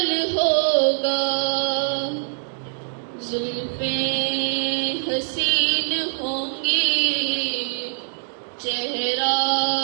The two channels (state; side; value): silent; left; digital silence